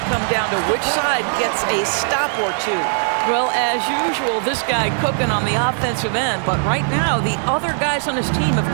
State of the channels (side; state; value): left; silent; digital silence